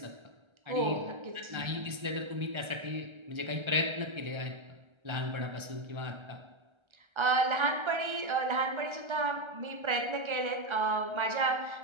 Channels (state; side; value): late; left; 1.3 ms